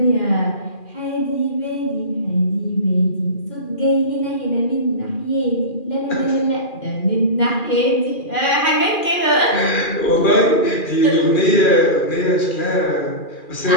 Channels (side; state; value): right; late; 2.4 ms